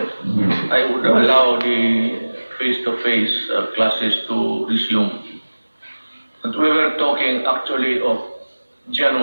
I would allow the face-to-face classes to resume. But we were talking actually of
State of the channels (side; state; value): both; inverted; correlation -1.00